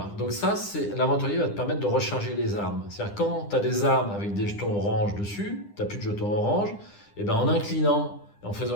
donc ça, l'aventurier va te permettre de recharger les armes. C'est-à-dire quand tu as des armes avec des jetons orange dessus, tu n'as plus de jetons orange, et ben en inclinant et en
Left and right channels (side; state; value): right; late; 9.9 ms